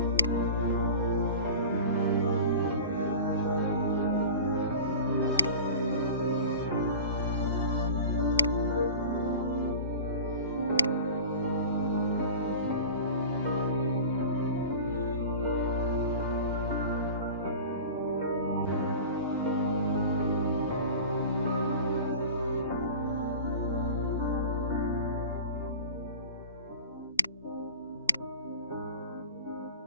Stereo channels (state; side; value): inverted; both; correlation -0.37